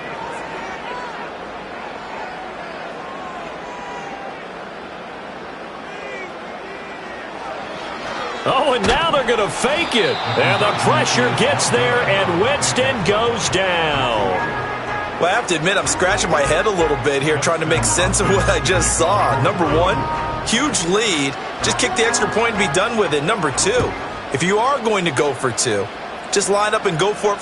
Oh, and now they're going to fake it. And the pressure gets there, and Winston goes down. Well, I have to admit, I'm scratching my head a little bit here trying to make sense of what I just saw. Number one, huge lead. Just kick the extra point and be done with it. Number two, if you are going to go for 2, just line up and go for it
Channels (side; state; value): both; identical; correlation 1.00